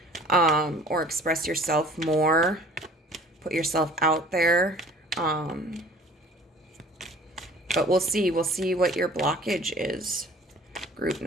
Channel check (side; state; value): both; normal; correlation 0.49